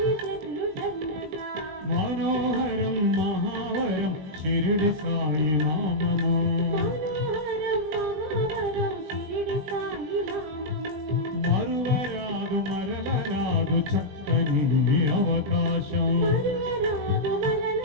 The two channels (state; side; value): late; left; 20 ms